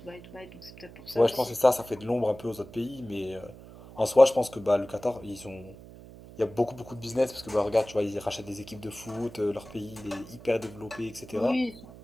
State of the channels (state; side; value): noise; right; hum, 18 dB below the sound